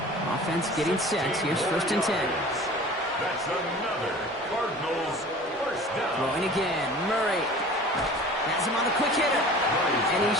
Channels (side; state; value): both; normal; correlation 0.42